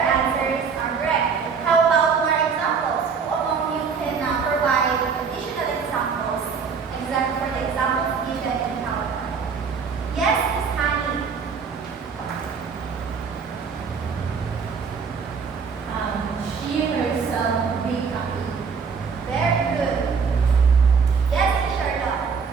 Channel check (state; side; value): quieter; left; 5.8 dB